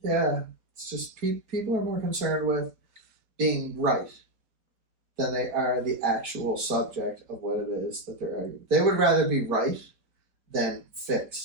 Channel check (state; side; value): late; left; 4.4 ms